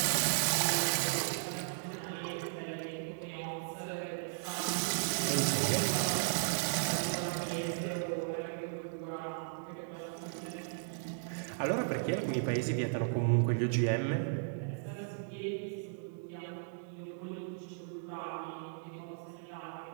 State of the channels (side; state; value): left; silent; digital silence